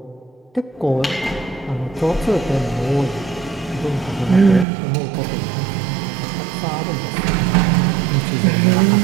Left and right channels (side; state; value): left; drops out; at 4.7 s